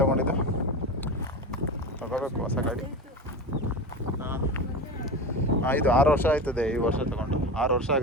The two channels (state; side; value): normal; both; correlation 0.25